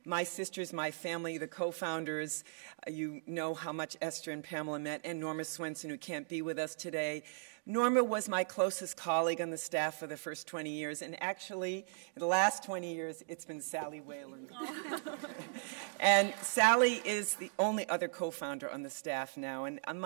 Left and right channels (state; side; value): silent; left; digital silence